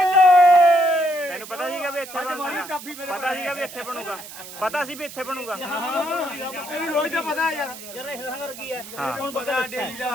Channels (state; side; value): noise; right; hiss, 14 dB below the sound